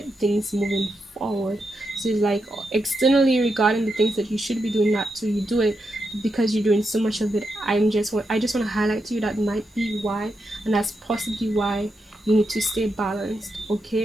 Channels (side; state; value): both; normal; correlation 0.85